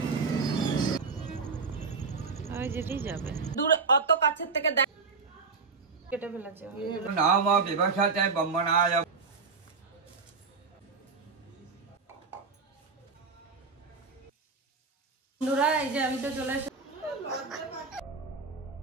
ওই যেতেই যাবে দূরে, অত কাছের থেকে দেখ কেটে ফেলেছে। নাম বিভাষাতে বম্বনায়। বন্ধুরা এই যে আমি তো চলে এসেছি।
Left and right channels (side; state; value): left; quieter; 4.6 dB